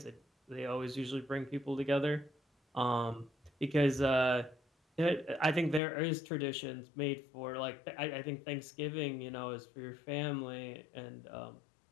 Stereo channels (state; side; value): drops out; right; at 5.8 s